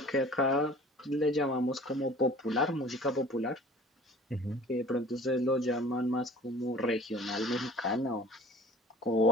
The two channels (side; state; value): both; normal; correlation 0.46